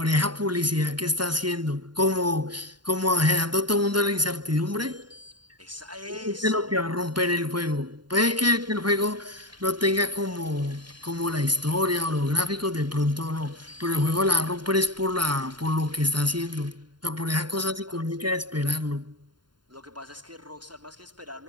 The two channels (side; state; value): left; late; 0.71 ms